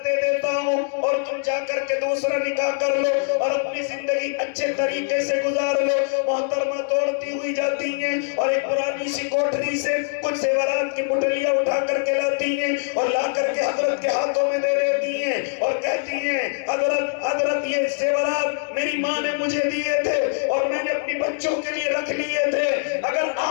دے دیتا ہوں اور تم جا کر کے دوسرا نکاح کر لو اور اپنی زندگی اچھے طریقے سے گزار لو۔ محترمہ دوڑتی ہوئی جاتی ہیں اور ایک پرانی سی کوٹری سے کچھ زیورات کی پٹلیاں اٹھا کر کے لاتی ہیں اور لا کر کے حضرت کے ہاتھوں میں دے دیتی ہیں اور کہتی ہیں حضرت یہ زیورات میری ماں نے مجھے دیے تھے اور میں نے اپنی بچوں کے لیے رکھ لیے تھے، اگر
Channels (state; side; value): silent; right; digital silence